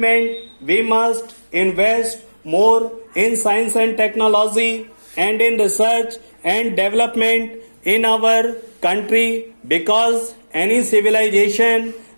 we must invest more in science and technology and in research and development in our country, because any civilization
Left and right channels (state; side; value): inverted; both; correlation -1.00